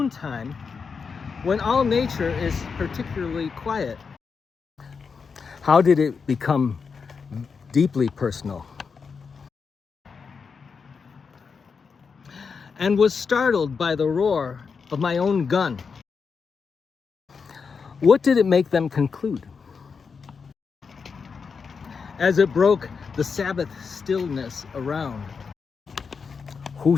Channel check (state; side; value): quieter; right; 5.5 dB